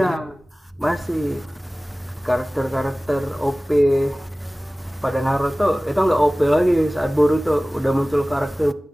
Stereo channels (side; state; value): both; normal; correlation 0.98